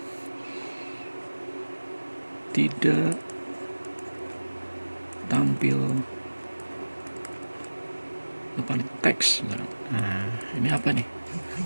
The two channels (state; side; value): inverted; both; correlation -1.00